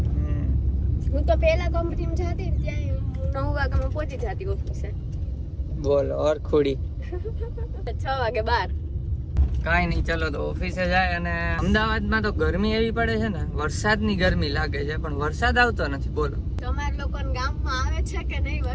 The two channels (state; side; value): identical; both; correlation 1.00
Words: હું તો પહેલા કંપનીમાં જતી ત્યાં 9 વાગ્યામાં પહોંચી જતી ઓફિસે. બોલો હરખુડી. 6 વાગે બહાર. કાંઈ નહીં, ચલો તો ઓફિસે જાય. અને અમદાવાદમાં તો ગરમી એવી પડે છે ને, વરસાદની ગરમી લાગે છે, પણ વરસાદ આવતો નથી. બોલો, તમારા લોકોના ગામમાં આવે છે કે નહીં